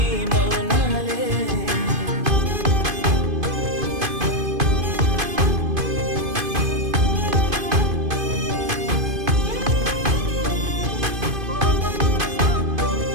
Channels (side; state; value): left; late; 2.5 ms